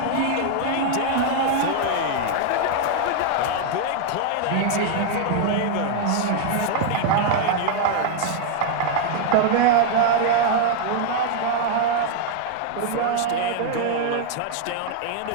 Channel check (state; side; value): different; both; correlation 0.00